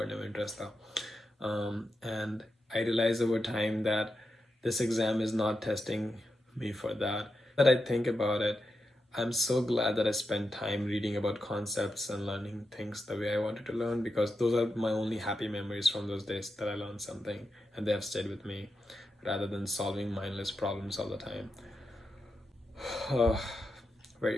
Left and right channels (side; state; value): both; normal; correlation 0.87